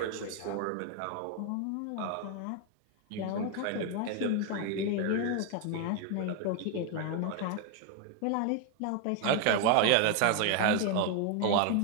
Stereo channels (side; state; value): both; different; correlation 0.01